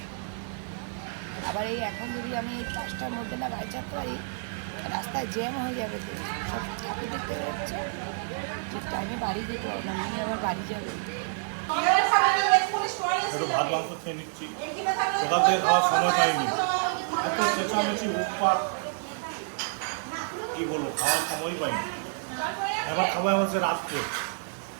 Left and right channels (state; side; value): silent; left; digital silence